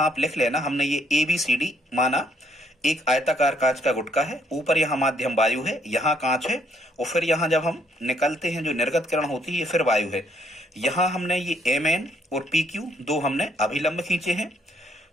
आप लिख लेना, हमने ये ABCD माना एक आयताकार कांच का गुटका है, ऊपर यहाँ माध्यम वायु है, यहाँ कांच है, और फिर यहाँ जब हम निकलते हैं जो निर्गत किरण होती है ये फिर वायु है। यहाँ हमने ये MN और PQ दो हमने अभिलंब खींचे हैं।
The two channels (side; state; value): both; normal; correlation 0.69